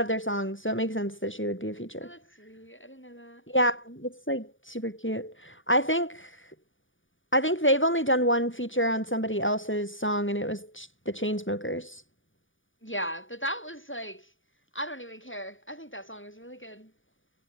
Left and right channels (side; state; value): right; late; 0.57 ms